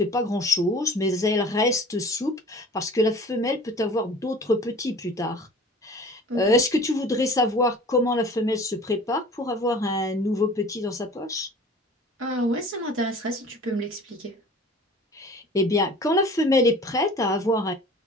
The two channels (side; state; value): both; normal; correlation 0.44